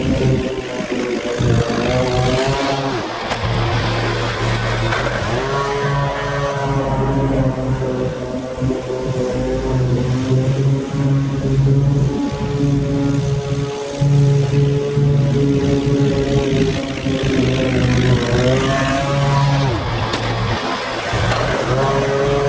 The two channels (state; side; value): identical; both; correlation 1.00